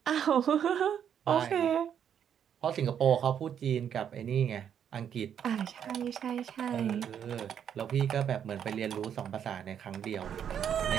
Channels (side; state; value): left; quieter; 8.7 dB